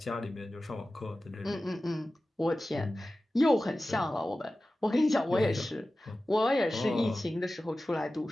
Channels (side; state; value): both; normal; correlation 0.95